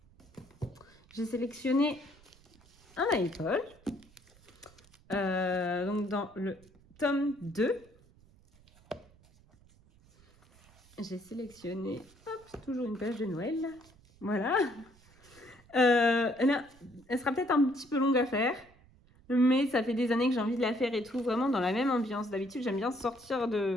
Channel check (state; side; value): noise; right; rumble, 28 dB below the sound